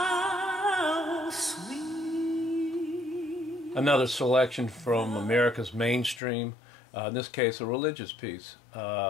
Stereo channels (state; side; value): drops out; right; at 6.2 s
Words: sweet. Another selection from America's mainstream, in this case a religious piece.